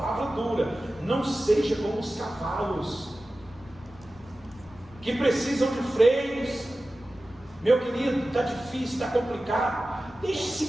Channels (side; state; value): left; noise; rumble, 23 dB below the sound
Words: dura: não seja como os cavalos que precisam de freios. Meu querido, está difícil, está complicado, deixe-se